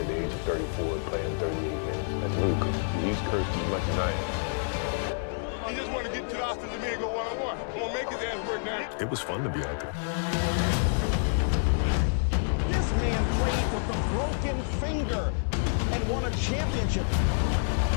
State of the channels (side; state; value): right; silent; 59 dB below the other